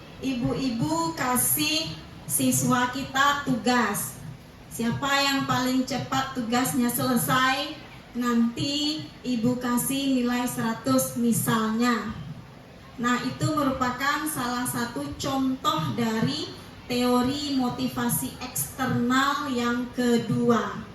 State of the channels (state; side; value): identical; both; correlation 1.00